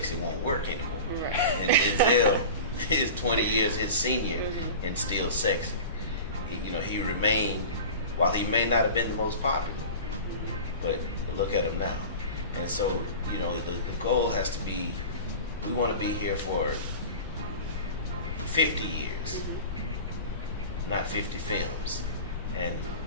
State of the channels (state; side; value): inverted; both; correlation -0.35